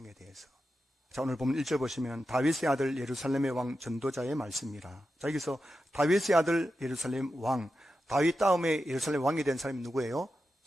대해서. 자, 오늘 본문 1절 보시면 다윗의 아들 예루살렘의 왕 전도자의 말씀이라. 자, 여기서 다윗의 아들 예루살렘 왕, 다윗 다음에 예루살렘 왕이 된 사람이 누구예요?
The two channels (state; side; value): normal; both; correlation 0.90